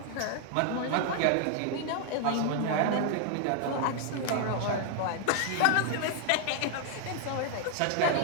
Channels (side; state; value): both; different; correlation 0.00